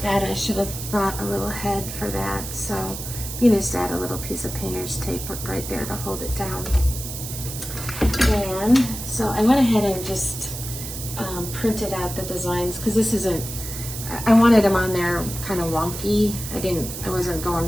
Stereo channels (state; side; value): noise; right; hiss, 8 dB below the sound